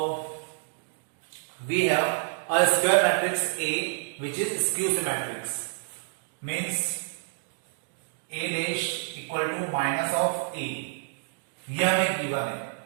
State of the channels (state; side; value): silent; left; digital silence